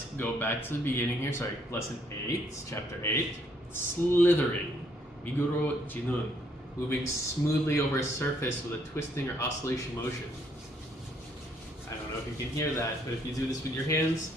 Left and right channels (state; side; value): normal; both; correlation 0.69